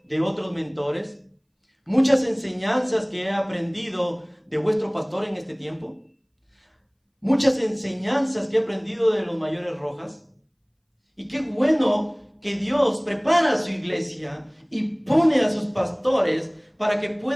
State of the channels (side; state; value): both; identical; correlation 1.00